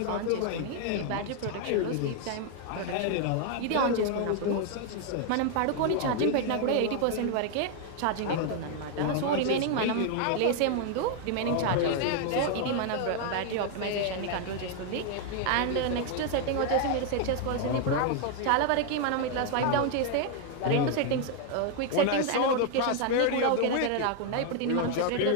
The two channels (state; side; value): different; both; correlation 0.00